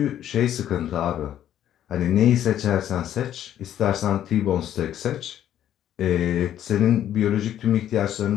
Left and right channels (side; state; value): right; quieter; 11.1 dB